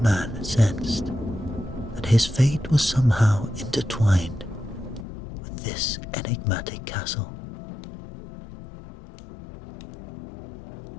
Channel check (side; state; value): right; drops out; at 5.1 s